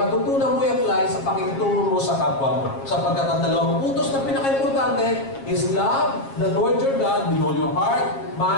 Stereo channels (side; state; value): right; late; 7.4 ms